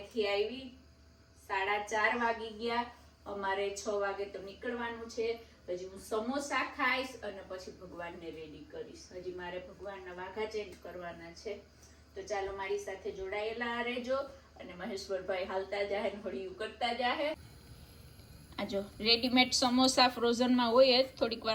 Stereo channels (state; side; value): identical; both; correlation 1.00